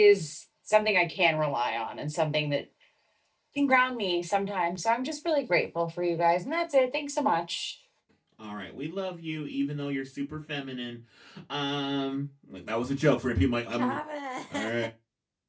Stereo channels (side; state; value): both; identical; correlation 1.00